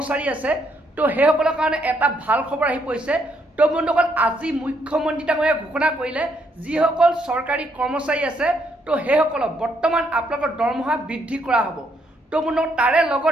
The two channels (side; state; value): both; normal; correlation 0.73